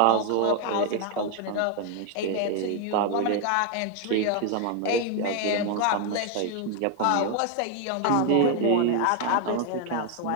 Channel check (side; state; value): both; different; correlation 0.01